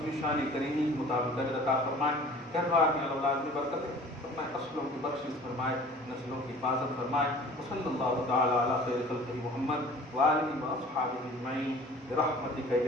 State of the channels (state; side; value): normal; both; correlation 0.46